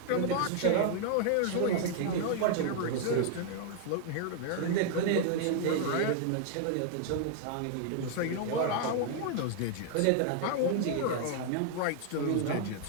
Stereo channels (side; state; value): both; different; correlation 0.00